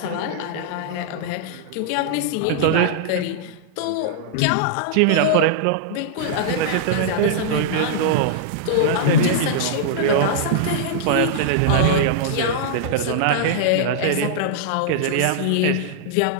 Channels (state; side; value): different; both; correlation -0.01